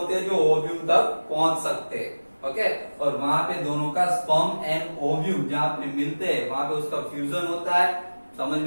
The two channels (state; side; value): inverted; both; correlation -1.00